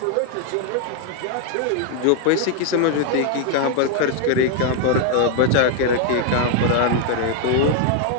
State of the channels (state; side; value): different; both; correlation 0.00